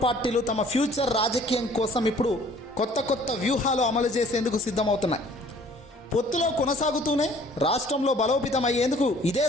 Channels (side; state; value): both; normal; correlation 0.54